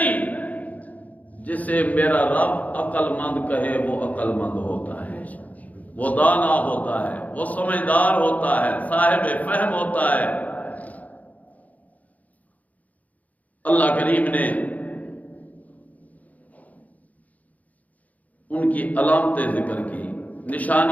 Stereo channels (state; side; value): late; right; 0.076 ms